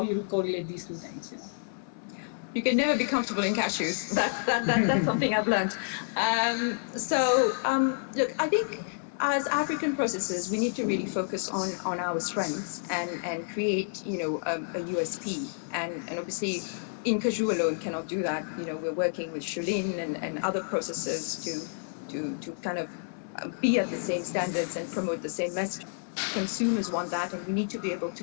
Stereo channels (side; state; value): right; silent; 58 dB below the other